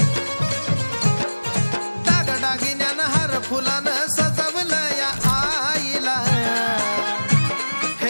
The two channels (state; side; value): inverted; both; correlation -1.00